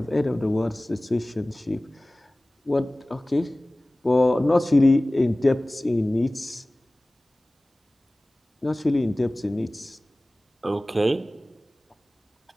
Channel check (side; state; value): both; normal; correlation 0.98